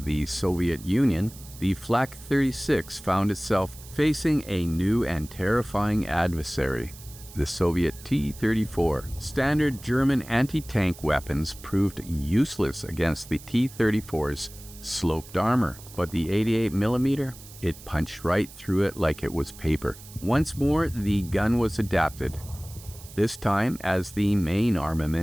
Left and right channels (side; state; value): right; noise; hiss, 18 dB below the sound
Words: the Soviet Union, the Flak 36 found itself facing a new and terrifying adversary, the Soviet T-34. Standard German anti-tank weapons proved useless against the T-34's sloped armor, but the 88mm, it punched right through it like it was paper. Once more, the gun was adapted, this time as the main